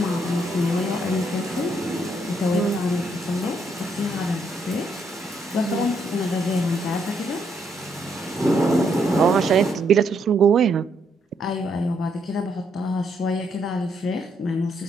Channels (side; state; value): both; normal; correlation 0.74